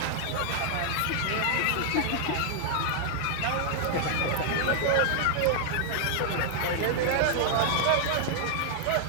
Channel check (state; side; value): different; both; correlation 0.00